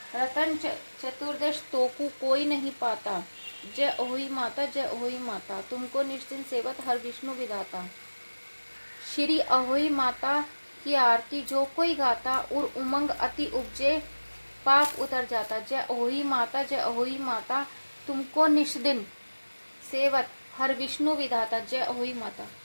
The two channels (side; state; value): both; inverted; correlation -1.00